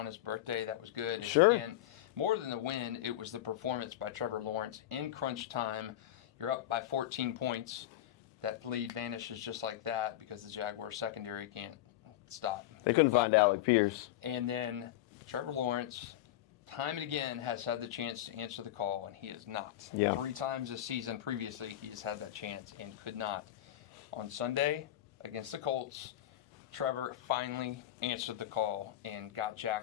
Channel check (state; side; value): quieter; right; 13.3 dB